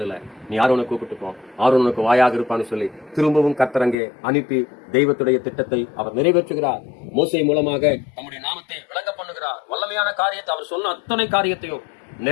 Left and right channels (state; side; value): drops out; right; at 4.0 s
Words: நீ ஆரோனை கூப்பிட்டு போ, ஆரோனுக்கு வாயாக இருப்பான்னு சொல்லி திரும்பவும் கர்த்தரங்கே அனுப்பி தெய்வத்துடைய திட்டத்தை அவர் நிறைவேற்றுகிறார். மோசே மூலமாக நம்முடைய நாமத்தை விளங்க பண்ணுகிறார். வல்லமையான காரியத்தை அவர் சொன்ன அத்தனை காரியத்தையும்